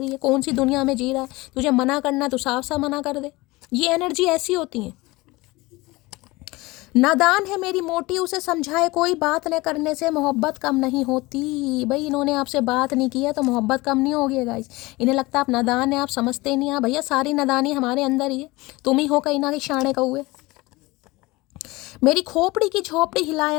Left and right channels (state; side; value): quieter; right; 21.6 dB